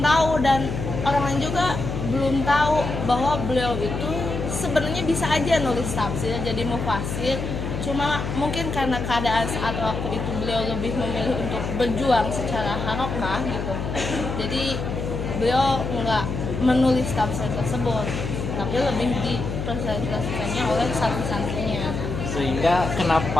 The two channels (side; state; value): left; noise; hum, 4 dB below the sound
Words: tahu, dan orang lain juga belum tahu bahwa beliau itu sebenarnya bisa aja nulis tafsir jadi mufasir, cuma mungkin karena keadaan saat waktu itu beliau lebih memilih untuk berjuang secara harokah gitu, jadi beliau nggak menulis tafsir tersebut, tapi lebih dipresentasikannya oleh santri-santrinya. Sehingga